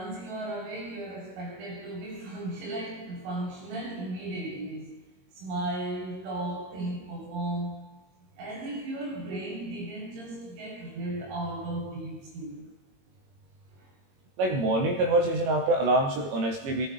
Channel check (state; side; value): late; left; 22 ms